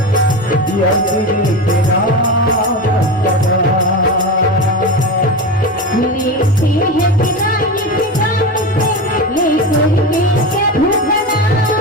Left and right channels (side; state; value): both; normal; correlation 0.22